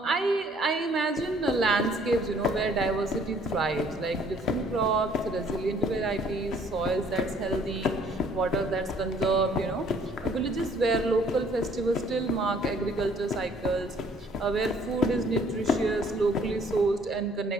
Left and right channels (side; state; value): both; normal; correlation 0.59